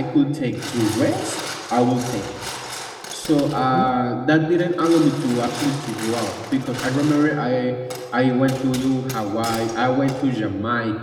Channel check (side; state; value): both; identical; correlation 1.00